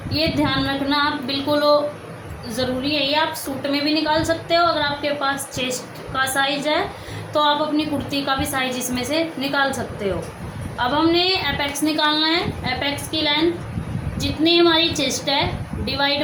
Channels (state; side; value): identical; both; correlation 1.00